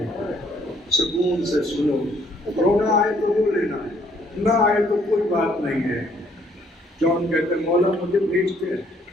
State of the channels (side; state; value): both; normal; correlation 0.65